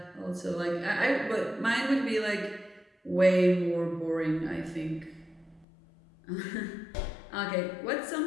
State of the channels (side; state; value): right; drops out; at 5.7 s